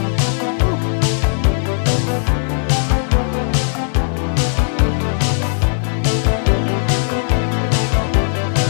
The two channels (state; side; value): silent; right; digital silence